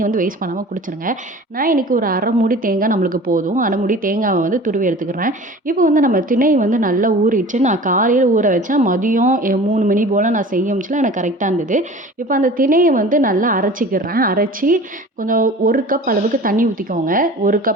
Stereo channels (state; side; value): normal; both; correlation 0.41